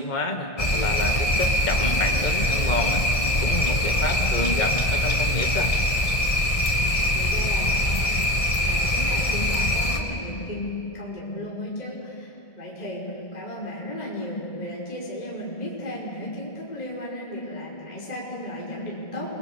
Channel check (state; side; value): late; right; 1.6 ms